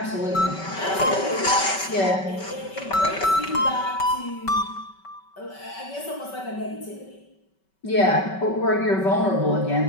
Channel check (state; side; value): late; right; 5.3 ms